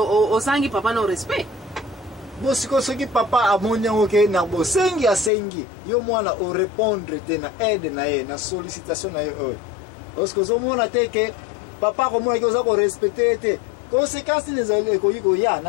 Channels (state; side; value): drops out; right; at 5.3 s